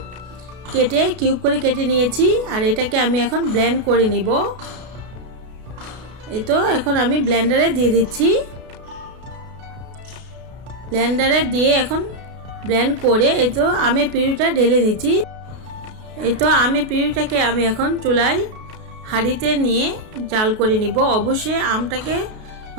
কেটে কিউব করে কেটে নিয়েছি। আর এটাকে আমি এখন ব্লেন্ড করে নিব। এই তো এখন আমি ব্লেন্ডারে দিয়ে দিচ্ছি। ব্লেন্ডারে দিয়ে এখন ব্লেন্ড করে এই তো আমের পিউরিটা ঢেলে নিচ্ছি। এই তো আমের পিউরিটাকে আমি এখন চুলায় হাঁড়িতে নিয়ে জাল করে নিব। অবশ্যই আমটাকে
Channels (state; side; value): late; left; 33 ms